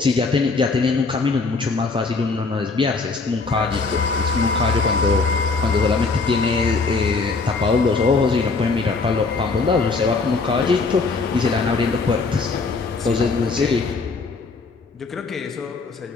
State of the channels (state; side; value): quieter; right; 4.1 dB